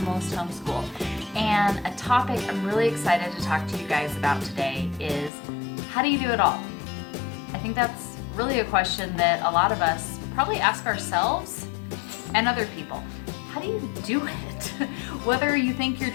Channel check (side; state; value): right; drops out; at 5.3 s